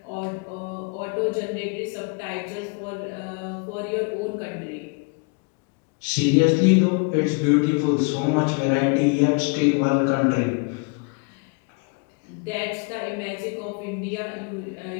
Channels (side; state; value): right; quieter; 33.4 dB